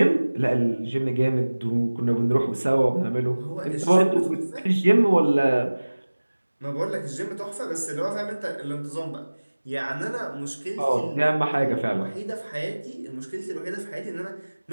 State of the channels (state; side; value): inverted; both; correlation -1.00